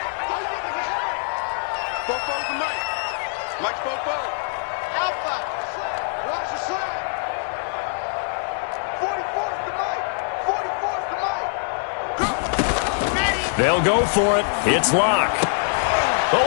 They'll go for it. It's Lock.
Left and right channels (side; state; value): right; silent; 63 dB below the other